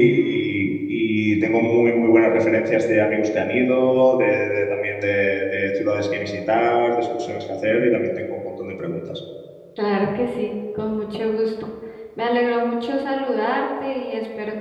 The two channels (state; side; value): identical; both; correlation 1.00